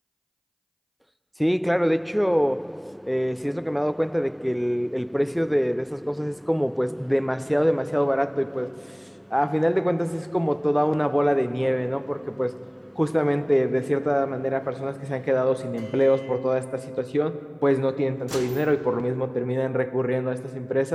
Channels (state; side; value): identical; both; correlation 1.00